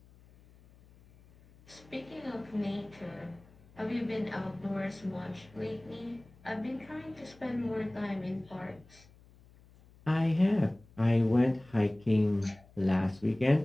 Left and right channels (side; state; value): left; noise; hum, 26 dB below the sound